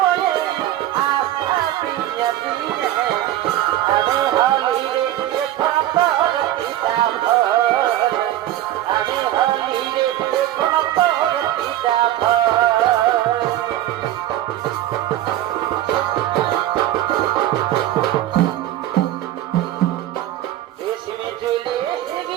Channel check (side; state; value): left; quieter; 13.6 dB